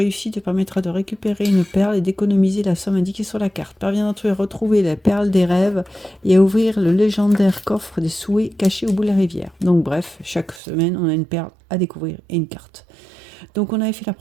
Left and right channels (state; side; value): drops out; left; at 10.6 s